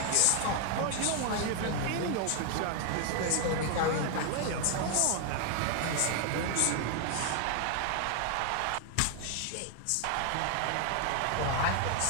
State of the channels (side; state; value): both; different; correlation 0.00